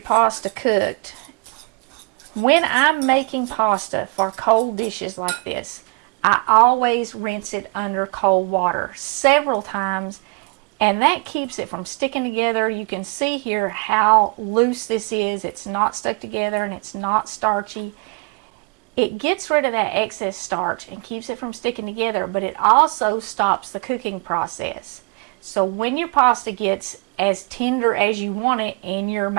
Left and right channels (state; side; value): quieter; left; 33.7 dB